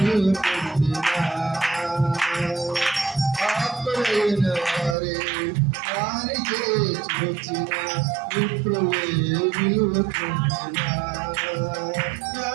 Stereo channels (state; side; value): drops out; left; at 5.0 s